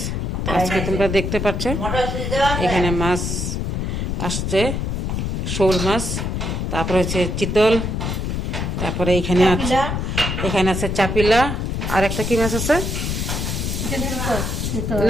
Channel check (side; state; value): left; noise; rumble, 1 dB below the sound